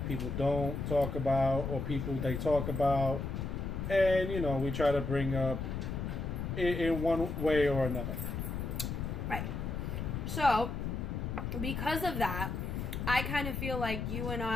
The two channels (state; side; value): noise; left; rumble, 3 dB below the sound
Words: people don't talk about, or people they talk about. And, we try to bring up in one way or another. Right. So, because of that, I kind of feel like you and